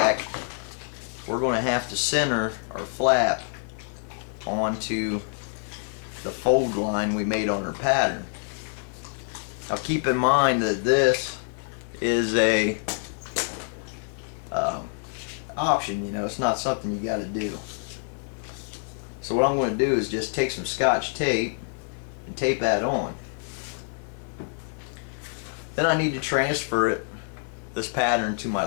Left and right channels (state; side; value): silent; right; digital silence